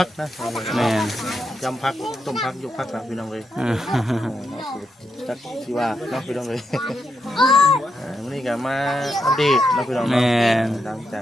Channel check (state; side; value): normal; both; correlation 0.83